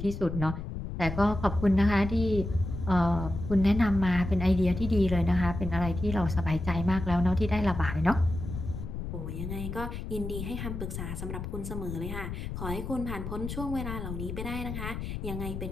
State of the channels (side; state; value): left; noise; rumble, 6 dB below the sound